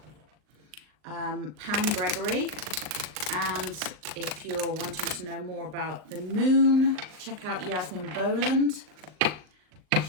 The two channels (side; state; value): left; late; 39 ms